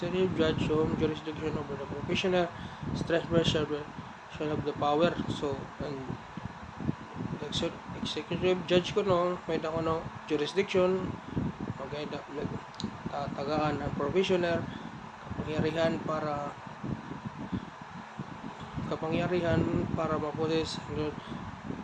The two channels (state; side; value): identical; both; correlation 1.00